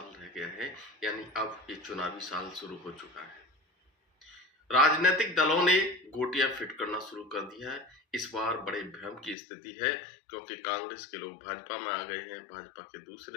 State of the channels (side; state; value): right; drops out; at 9.3 s